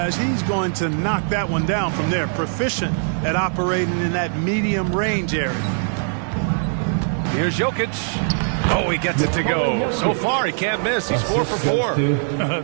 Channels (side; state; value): left; silent; 55 dB below the other